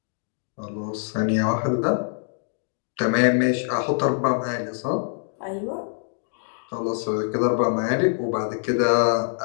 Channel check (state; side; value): silent; right; digital silence